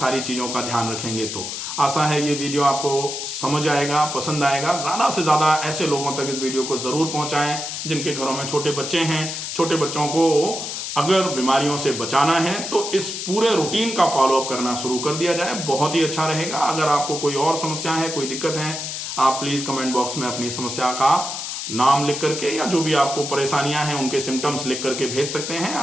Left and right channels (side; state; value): left; noise; hiss, 5 dB below the sound